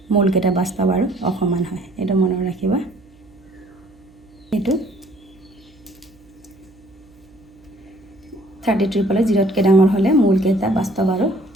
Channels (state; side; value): noise; right; hum, 29 dB below the sound